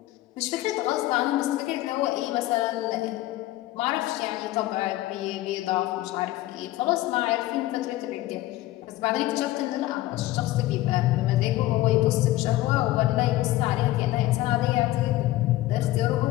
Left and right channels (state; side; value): quieter; right; 16.4 dB